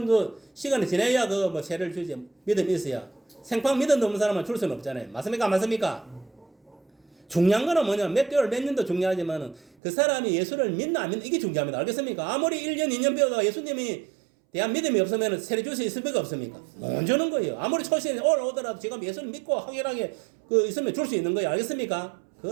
정도 시간이 지나야 그 뭐 세례를 주지. 믿음이 있어야. 생판 믿음 없는 사람은 줄 수는 없잖아요. 맞습니까? 안 맞습니까? 중요한 거는 뭐냐면 몇 개월 몇 년도 중요하지만은 그 사람이 예수를 믿나 안 믿나 이게 중요합니다. 알겠습니까? 아무리 1년 2년 배우다가 예수님이 대한 믿음이 없으면 세례 줄 수 있습니까? 없습니까? 못 주는 거예요. 아무리 초신에 올라오더라도 지금 예수를 믿고 확실하게 그 있으면 줄 수 있는 거예요. 알겠습니까?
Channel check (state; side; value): drops out; left; at 9.7 s